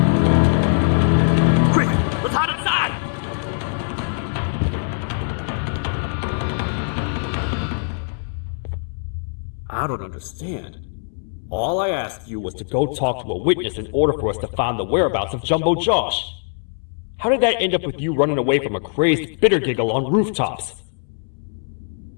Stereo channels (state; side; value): silent; right; 64 dB below the other